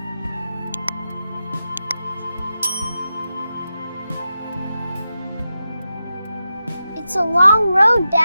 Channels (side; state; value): both; inverted; correlation -0.90